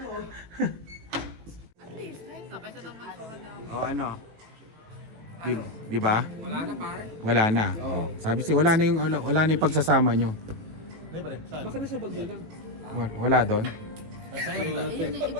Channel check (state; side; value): late; left; 18 ms